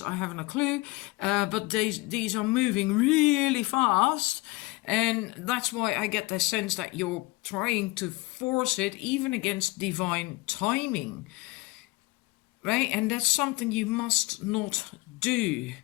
haven't a clue, but these are moving really fast. And that's why I get the sense that you're trying to force it even against divine timing. Right? And that's something you must not do.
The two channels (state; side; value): quieter; right; 22.8 dB